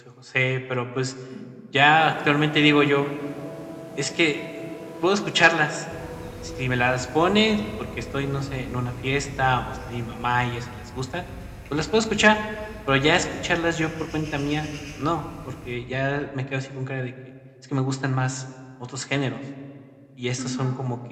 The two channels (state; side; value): identical; both; correlation 1.00